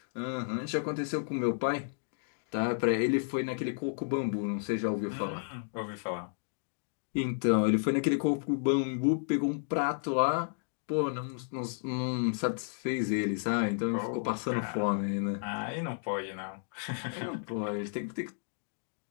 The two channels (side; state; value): right; silent; digital silence